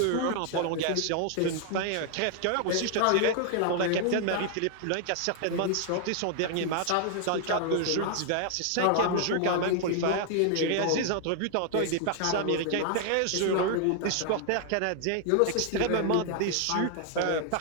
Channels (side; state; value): both; different; correlation 0.00